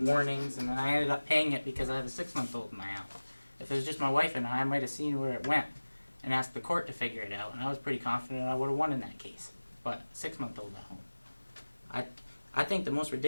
and then I ended up paying it because I have a 6-month-old in my house. If it was just my wife and I might have seen where it went and asked the court to figure it out, and I was pretty confident I would have won in that case. But 6-month-old at home. I think the most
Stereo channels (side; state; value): both; inverted; correlation -1.00